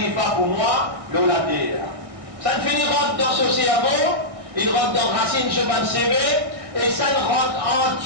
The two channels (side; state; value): left; late; 1.6 ms